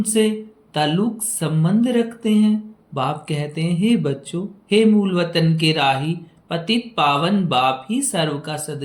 ताल्लुक संबंध रखते हैं। बाप कहते हैं, हे बच्चों, हे मूल वतन के राही, पतित पावन बाप ही सर्व का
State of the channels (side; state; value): both; identical; correlation 1.00